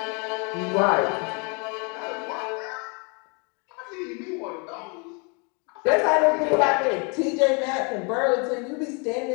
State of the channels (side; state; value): right; quieter; 33.9 dB